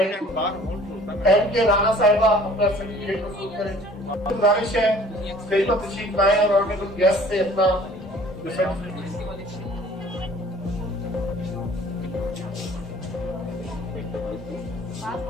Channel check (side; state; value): both; normal; correlation 0.51